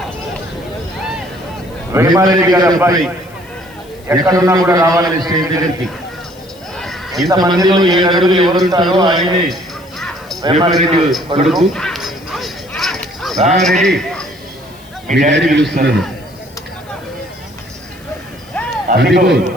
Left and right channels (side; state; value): left; noise; hiss, 26 dB below the sound